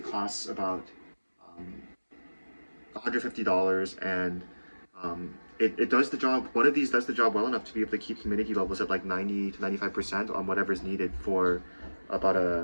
costs about um, $150, and it does the job. One of these does the job well enough to be able to keep humidity levels at like 90 to 95% on whatever is needed for about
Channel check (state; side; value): inverted; both; correlation -1.00